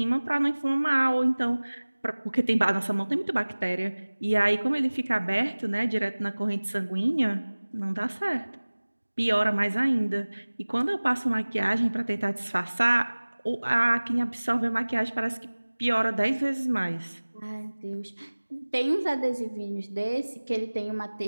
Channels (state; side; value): inverted; both; correlation -1.00